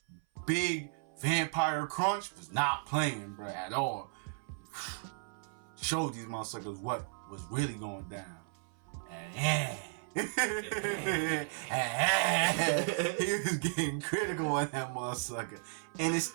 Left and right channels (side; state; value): left; silent; 55 dB below the other